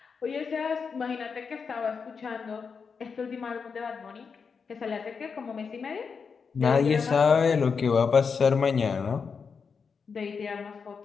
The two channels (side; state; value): right; quieter; 5.7 dB